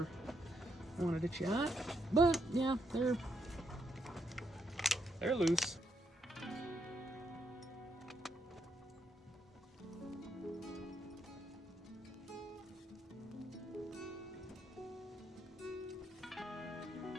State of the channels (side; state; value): both; normal; correlation 0.77